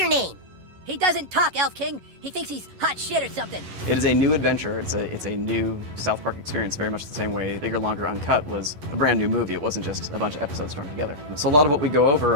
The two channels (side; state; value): left; late; 11 ms